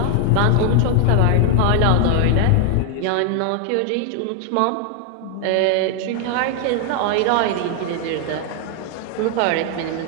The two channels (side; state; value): both; different; correlation 0.00